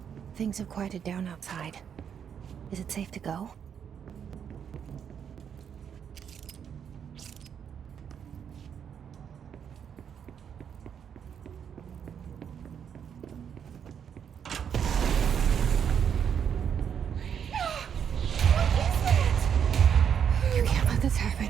Things have quieted down outside. Is it safe to go?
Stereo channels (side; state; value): left; quieter; 8.0 dB